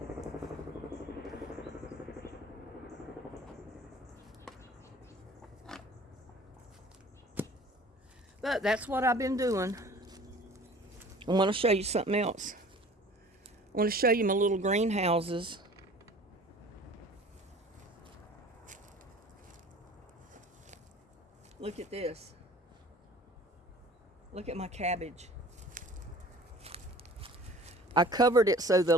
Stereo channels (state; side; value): normal; both; correlation 0.47